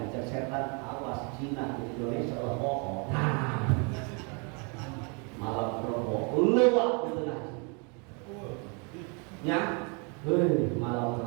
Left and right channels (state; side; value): quieter; left; 34.3 dB